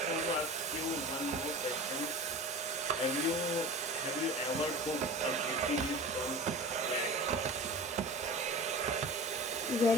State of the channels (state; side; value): normal; both; correlation 0.35